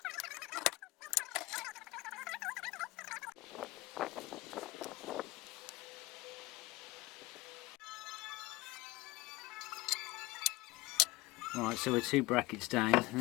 Right, so we're 2 brackets down. The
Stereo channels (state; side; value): quieter; right; 20.4 dB